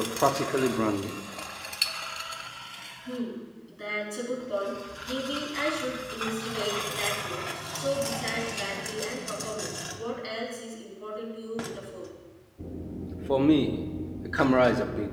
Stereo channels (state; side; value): identical; both; correlation 1.00